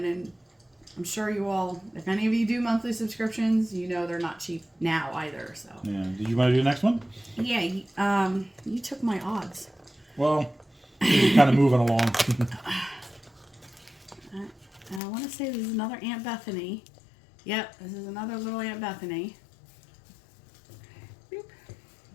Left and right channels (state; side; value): drops out; right; at 15.0 s